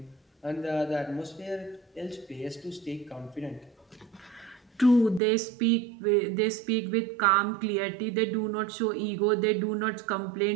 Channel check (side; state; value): left; drops out; at 5.2 s